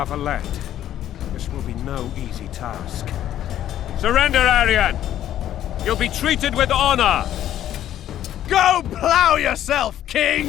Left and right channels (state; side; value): quieter; right; 11.7 dB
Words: this will be no easy task. Surrender, Aryan! You'll be treated with honor! Go plow yourself,